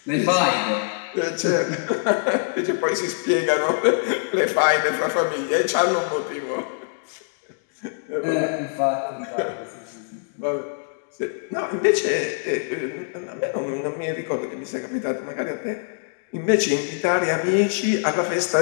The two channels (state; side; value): silent; right; digital silence